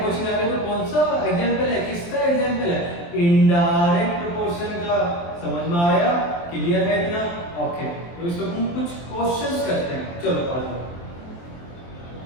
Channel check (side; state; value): right; late; 23 ms